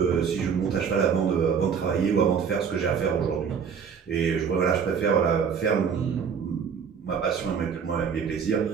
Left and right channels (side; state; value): left; quieter; 6.7 dB